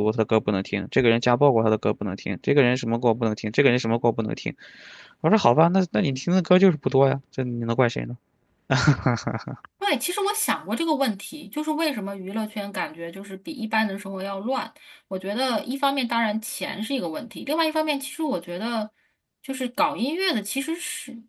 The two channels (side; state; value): both; identical; correlation 1.00